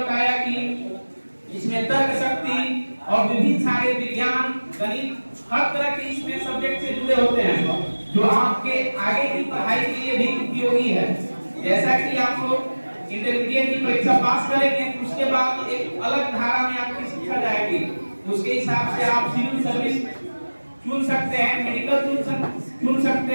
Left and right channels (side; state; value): both; inverted; correlation -1.00